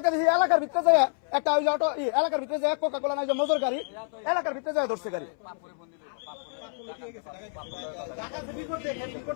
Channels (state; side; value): silent; right; 59 dB below the other